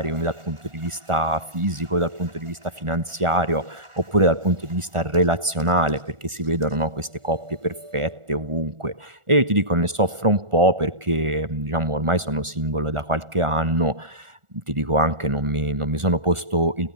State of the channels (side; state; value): left; late; 1.4 ms